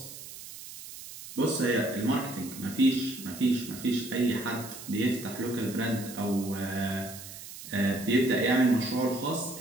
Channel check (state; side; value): noise; right; hiss, 13 dB below the sound